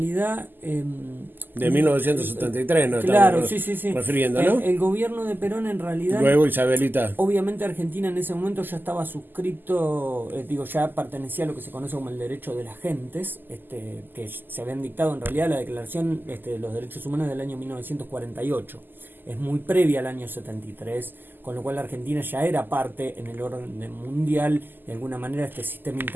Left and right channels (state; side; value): late; left; 0.091 ms